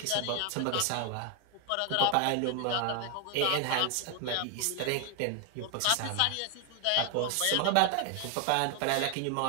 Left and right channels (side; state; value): both; different; correlation 0.01